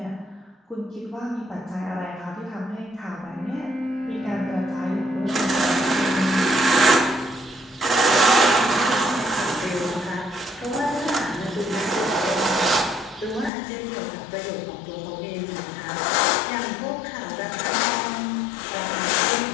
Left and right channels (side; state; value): right; drops out; at 13.5 s